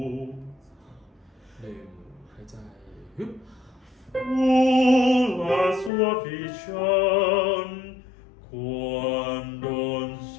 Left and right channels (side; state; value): right; drops out; at 5.9 s